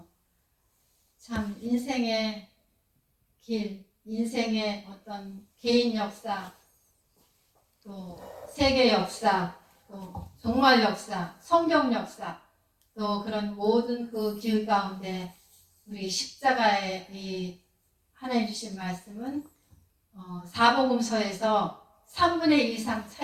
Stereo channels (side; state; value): both; identical; correlation 1.00